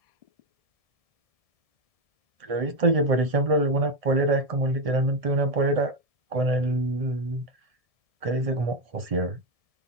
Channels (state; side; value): late; left; 1.7 ms